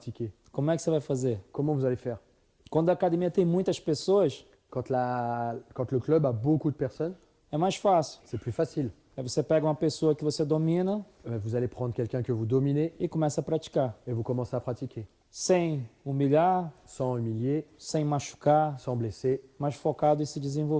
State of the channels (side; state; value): both; identical; correlation 1.00